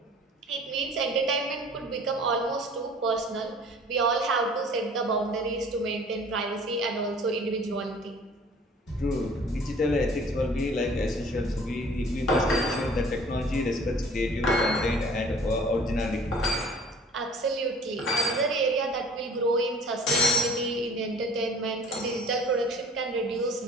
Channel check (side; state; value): both; normal; correlation 0.49